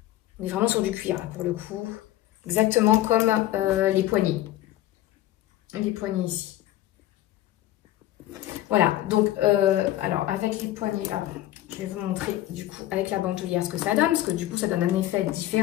on est vraiment sur du cuir là pour le coup. Exactement comme les poignées. Les poignées ici. Voilà, donc, alors avec les poignées, je vais vous montrer du coup avec la bandoulière ce que ça donne, parce que du coup ça donne un effet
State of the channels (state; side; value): quieter; right; 14.2 dB